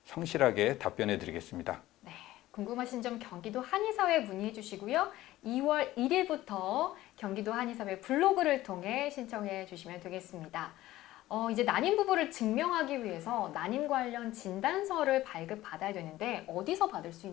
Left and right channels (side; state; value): right; quieter; 15.9 dB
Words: 성실하게 답변해 드리겠습니다. 네, 궁금하신 점 경기도 한의사회에 문의해 주시고요. 2월 1일부터 경기도 한의사회 블로그를 통해 신청해 주시면 되겠습니다. 이제 난임 부부를 증명하기 위해서 난임 관련 진단서를 발급받아야 되는데 어디서 받을 수